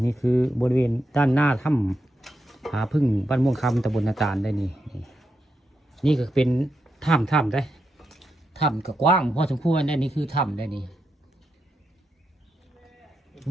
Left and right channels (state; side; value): normal; both; correlation 0.85